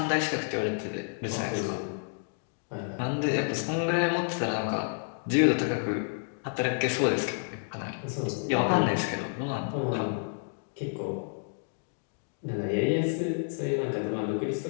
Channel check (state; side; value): silent; right; digital silence